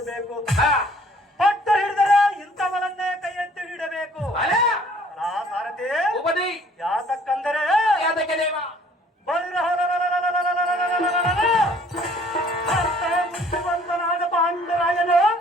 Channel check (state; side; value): normal; both; correlation 0.57